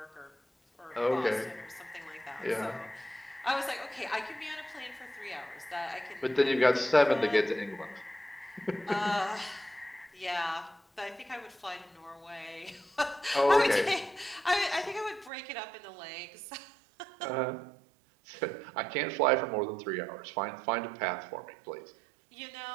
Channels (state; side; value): drops out; left; at 15.3 s